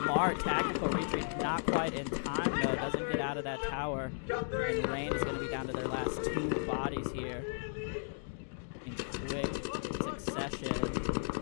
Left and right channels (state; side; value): silent; right; digital silence